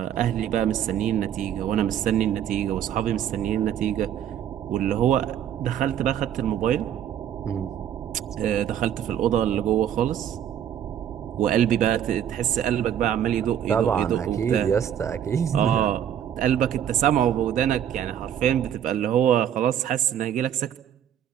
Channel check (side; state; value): left; quieter; 9.9 dB